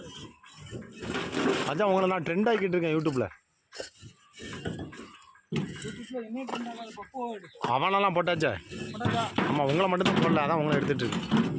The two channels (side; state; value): both; identical; correlation 1.00